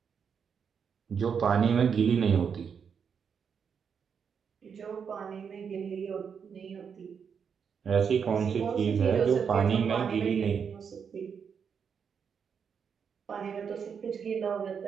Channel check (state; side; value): quieter; left; 6.8 dB